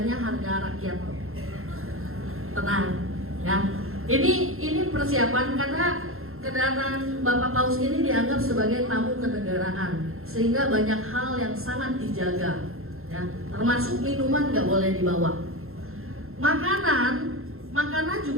harga rakyat. Tenang, ya. Ini persiapan karena kedatangan Bapak Paus ini dianggap sebagai tamu kenegaraan, sehingga banyak hal yang sangat dijaga, ya. Termasuk minuman nggak boleh dibawa. Makanan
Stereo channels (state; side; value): late; left; 0.62 ms